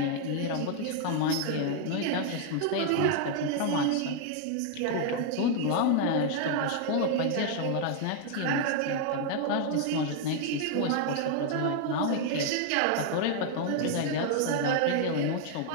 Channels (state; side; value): different; both; correlation 0.00